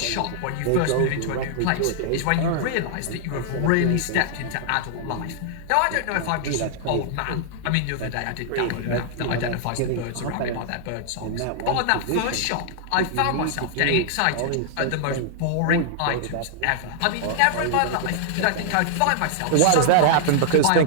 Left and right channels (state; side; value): different; both; correlation -0.01